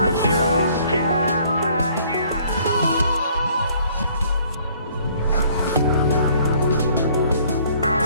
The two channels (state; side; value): inverted; both; correlation -0.59